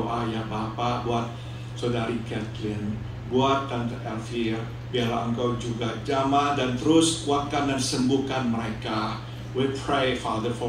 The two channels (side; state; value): both; identical; correlation 1.00